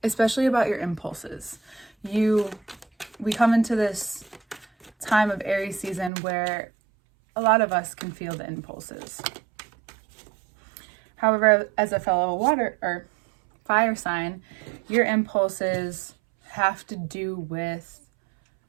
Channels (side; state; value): left; drops out; at 6.1 s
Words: especially about your impulses. We come into this time of Aries season where a lot of us can feel the impulses. However, as a fellow water or fire sign, your impulses have to do with